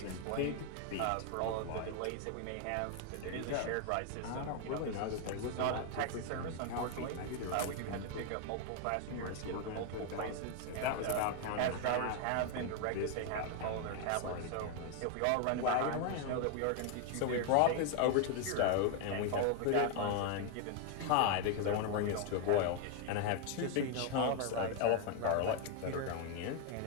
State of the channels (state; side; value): different; both; correlation 0.01